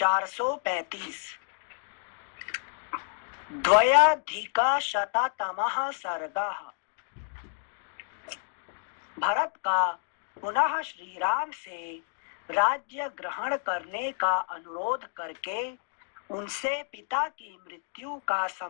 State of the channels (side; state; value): right; silent; digital silence